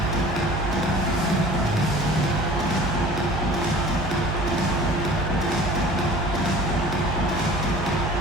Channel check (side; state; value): both; normal; correlation 0.44